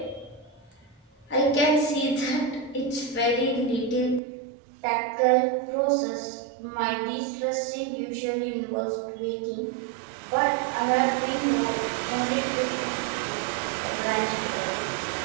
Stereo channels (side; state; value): left; drops out; at 4.2 s